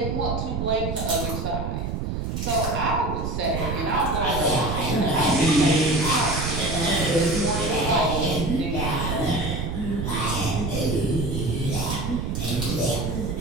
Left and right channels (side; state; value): right; noise; rumble, 2 dB below the sound